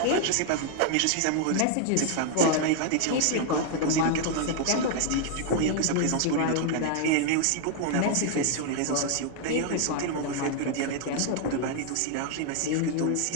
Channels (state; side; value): different; both; correlation 0.00